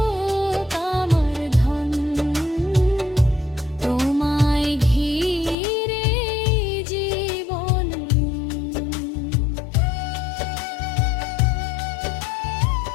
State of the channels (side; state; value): right; drops out; at 5.6 s